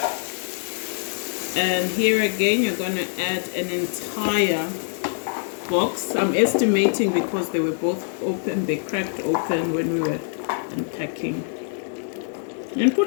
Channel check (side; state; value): right; silent; 62 dB below the other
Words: And here again, you're going to add an entire box. I'm estimating because they were both open, they cracked open when we were unpacking. And